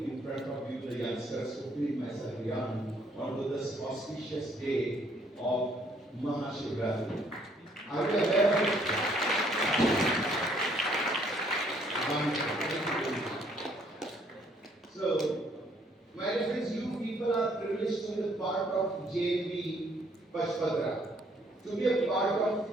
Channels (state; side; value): normal; both; correlation 0.65